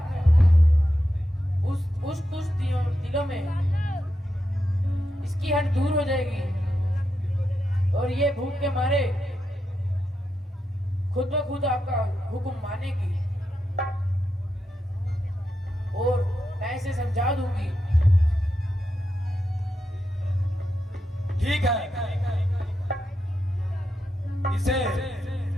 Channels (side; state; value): both; normal; correlation 0.86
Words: उस दिलों में इसकी हट दूर हो जाएगी और ये भूख के मारे खुद ब खुद आपका हुक्म मानेगी और मैं इसे समझा दूंगी। ठीक है, इसे